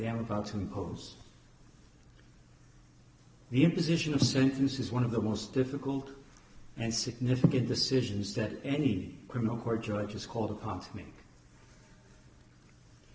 about to impose. The imposition of sentence is one of the most difficult and significant decisions that any criminal court judge is called upon to make.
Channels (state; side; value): identical; both; correlation 1.00